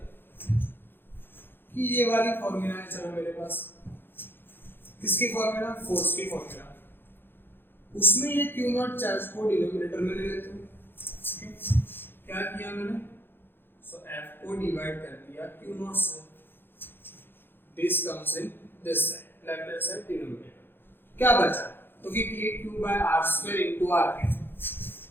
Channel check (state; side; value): late; right; 0.10 ms